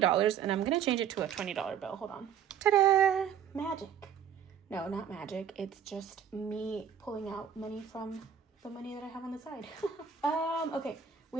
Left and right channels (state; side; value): quieter; left; 8.4 dB